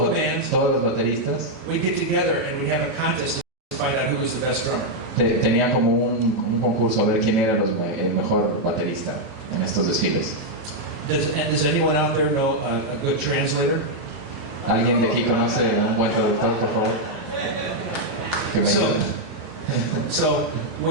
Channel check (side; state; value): both; normal; correlation -0.01